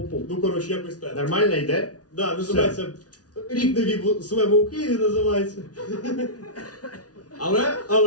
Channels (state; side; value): late; right; 0.68 ms